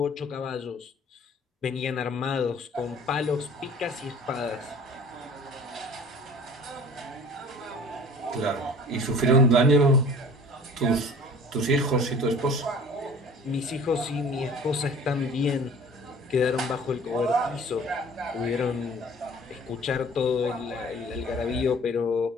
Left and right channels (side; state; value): both; normal; correlation 0.46